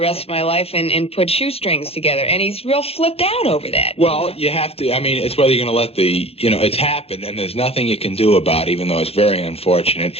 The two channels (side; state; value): right; late; 0.29 ms